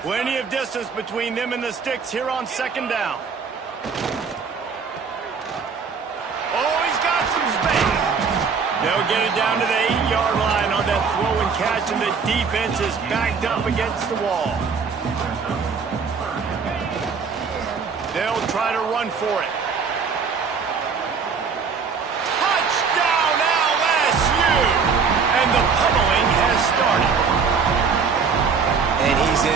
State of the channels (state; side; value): quieter; left; 5.6 dB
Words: Plenty of distance between them and the sticks here on second down. Oh, he's got some space. They'll get it down to the 8-yard line on that throw and catch, and the defense is backed up against the wall. They'll try to run for it. Touchdown LSU! And the pummeling has started. And he's